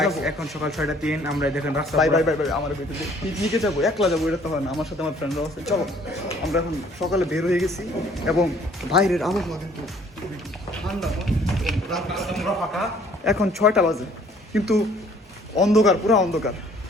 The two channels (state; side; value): normal; both; correlation 0.58